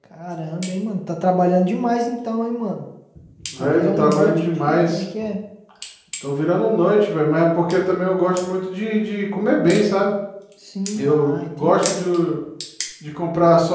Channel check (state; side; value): identical; both; correlation 1.00